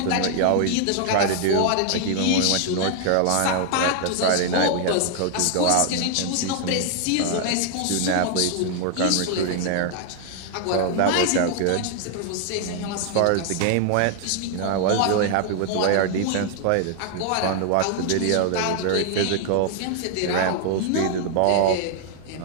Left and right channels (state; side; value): different; both; correlation 0.00